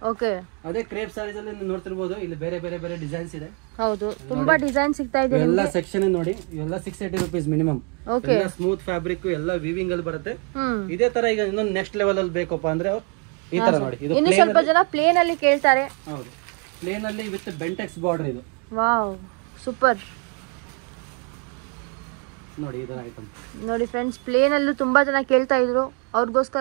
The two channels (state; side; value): quieter; left; 36.5 dB